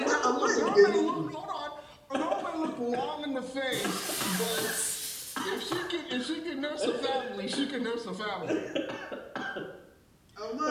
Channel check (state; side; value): identical; both; correlation 1.00